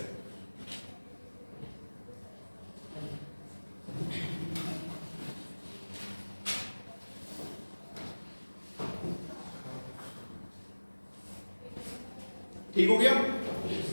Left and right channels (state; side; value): inverted; both; correlation -1.00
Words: ठीक हो गया।